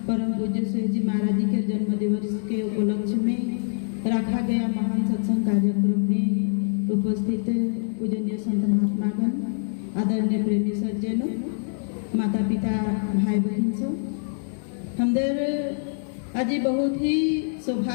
परम पूज्य सुहेज जी महाराज जी के जन्म दिवस के उपलक्ष्य में रखा गया महान सत्संग कार्यक्रम में उपस्थित पूजनीय संत महात्मागण, आदरणीय प्रेमी सज्जनों, माता पिता, भाई बहन सब हमदर आज बहुत ही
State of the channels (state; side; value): silent; right; digital silence